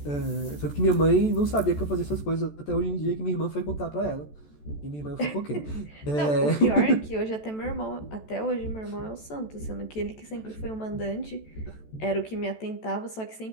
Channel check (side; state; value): right; late; 14 ms